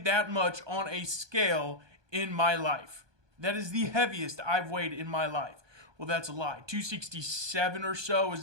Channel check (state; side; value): late; left; 1.2 ms